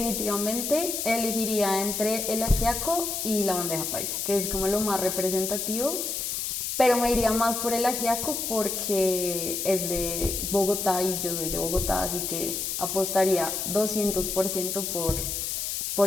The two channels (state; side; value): noise; left; hiss, 2 dB below the sound